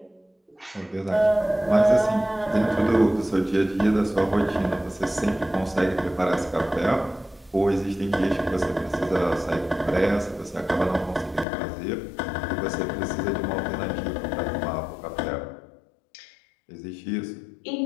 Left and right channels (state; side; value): drops out; right; at 11.5 s